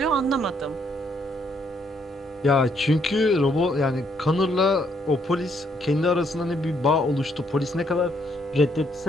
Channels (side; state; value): both; normal; correlation 0.71